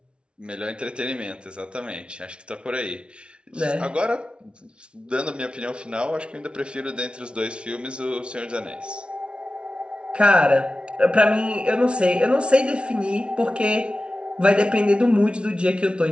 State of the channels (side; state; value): left; late; 0.058 ms